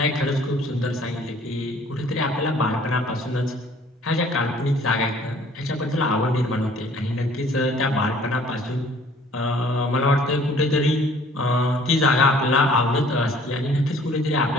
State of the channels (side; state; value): both; normal; correlation 0.55